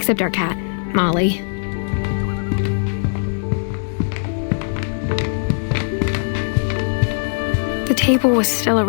our cat, Molly. The table was still a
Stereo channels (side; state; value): right; silent; 66 dB below the other